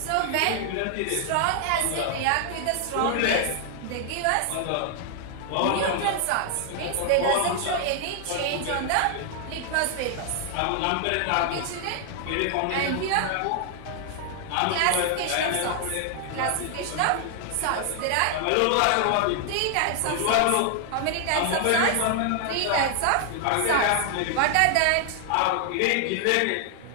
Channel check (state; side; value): different; both; correlation 0.00